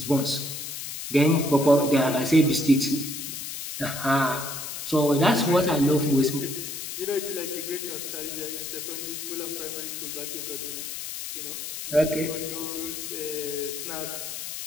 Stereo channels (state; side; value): noise; left; hiss, 7 dB below the sound